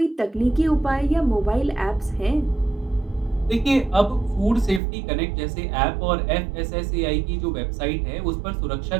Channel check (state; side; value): drops out; left; at 4.8 s